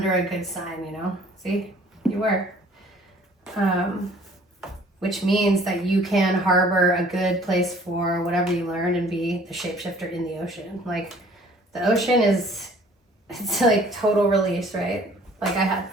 a good sign, you know? See? You were. Which means that you can harbor a good place for whatever you learned and be the shapeshifter in the ocean. Like the ocean it's like total release, right? Like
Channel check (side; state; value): both; normal; correlation 0.54